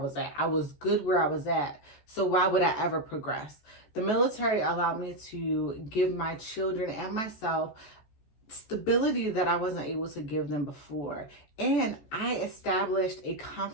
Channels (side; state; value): right; late; 14 ms